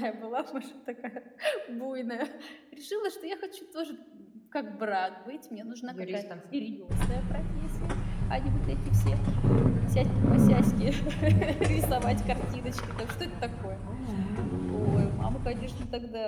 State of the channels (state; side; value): identical; both; correlation 1.00